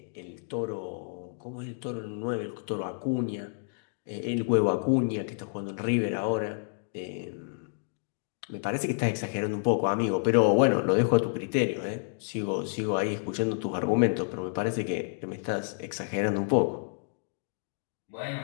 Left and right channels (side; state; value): right; silent; digital silence